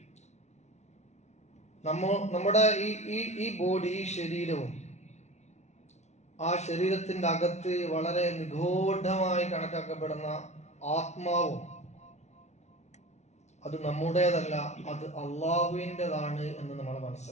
നമ്മുടെ ഈ ബോഡി, ഈ ശരീരവും ആ ശരീരത്തിന്റെ അകത്ത് വളരെ നിഗൂഢമായി കണക്കാക്കപ്പെടുന്ന ആത്മാവും അത് നമ്മുടേതല്ല, അത് അള്ളാഹുവിൻ്റെതാണ് എന്ന് നമ്മൾ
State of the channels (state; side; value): late; right; 0.32 ms